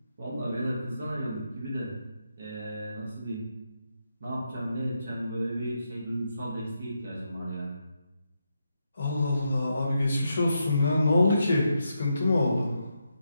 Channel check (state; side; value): inverted; both; correlation -0.83